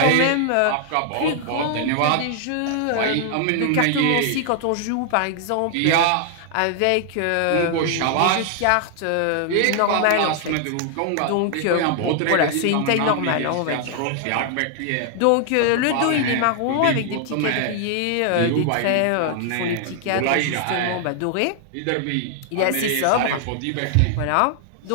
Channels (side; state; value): both; different; correlation 0.00